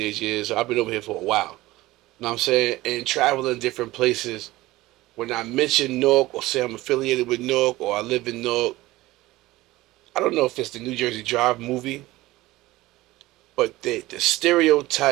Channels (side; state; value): left; quieter; 18.3 dB